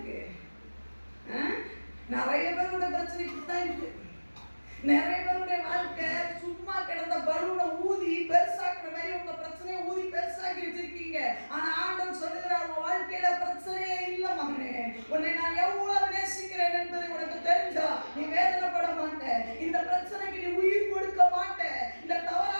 நிறைய பேரோட பிரச்சனை இப்படித்தான் இருக்கு. நிறைய பேருடைய வாழ்க்கை சும்மா கிடந்த பலூனை ஊதி பெருசாக்குற மாதிரி உங்க பிரச்சனையை ஊதி பெருசாக்கி வச்சிருக்கீங்க. ஆனா ஆண்டவன் சொல்லுகிறார், உங்க வாழ்க்கையில பிரச்சனையே இல்ல மகனே. உன்னை நான் எவ்வளவு நேசிக்கிறேன் என்பதை உனக்கு தெரிஞ்சா நீ வேதனைப்பட மாட்ட. இந்த பிரச்சனைக்கு நீ உயிர் கொடுக்க மாட்ட. இந்த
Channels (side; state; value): both; inverted; correlation -1.00